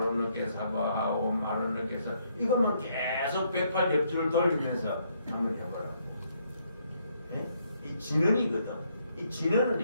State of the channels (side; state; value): both; inverted; correlation -0.72